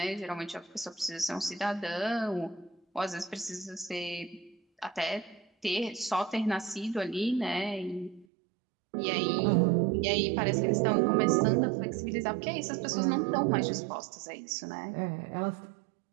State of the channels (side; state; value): left; drops out; at 8.2 s